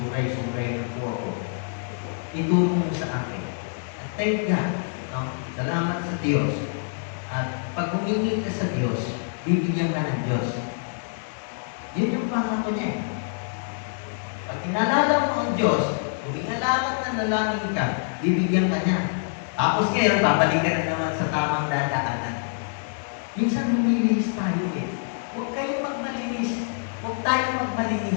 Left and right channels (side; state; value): right; silent; 61 dB below the other